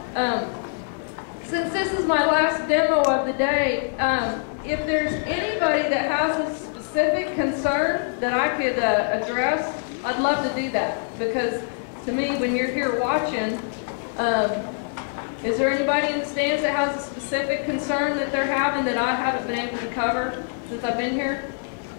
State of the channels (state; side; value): silent; right; 62 dB below the other